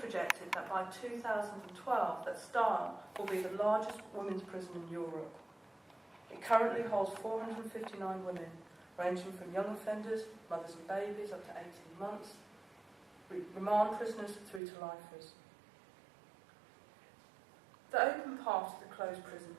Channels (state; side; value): drops out; left; at 14.6 s